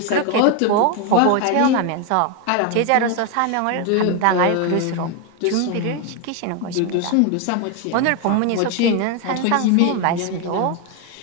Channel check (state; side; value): different; both; correlation 0.01